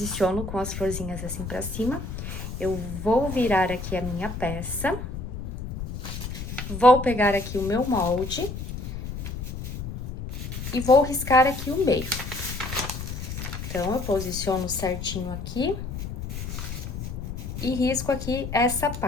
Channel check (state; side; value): noise; left; rumble, 7 dB below the sound